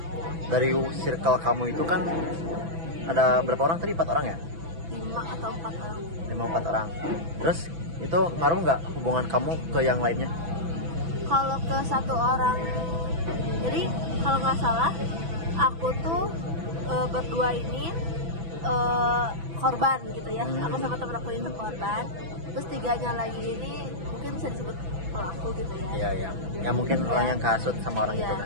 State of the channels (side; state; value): left; late; 6.0 ms